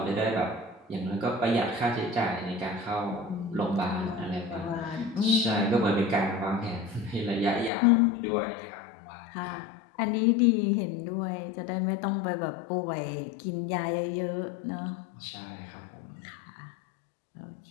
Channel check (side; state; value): right; drops out; at 7.7 s